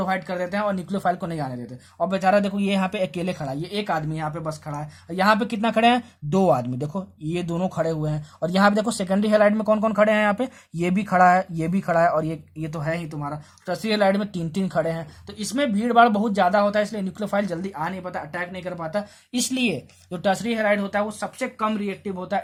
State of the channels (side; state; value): both; identical; correlation 1.00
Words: कर देते हैं और न्यूक्लियोफाइल को नहीं आने देते। और बेचारा देखो ये यहाँ पे अकेले खड़ा है, ये एक आदमी यहाँ पे बस खड़ा है, और यहाँ पे कितना खड़े हैं, 2 आदमी, देखो ये दोनों खड़े हुए हैं। और यहाँ पे देखो सेकेंडरी हेलाइड में कौन कौन खड़े हैं, यहाँ पे ये भी खड़ा है, ये भी खड़ा है, और ये तो है ही तुम्हारा। टर्शियरी हेलाइड में 3-3 खड़े हैं, तो इसमें भीड़ भाड़ बहुत ज्यादा होता है, इसलिए न्यूक्लियोफाइल जल्दी आ नहीं पाता, अटैक नहीं कर पाता। इसलिए जो टर्शियरी हेलाइड होता है वो सबसे कम रिएक्टिव होता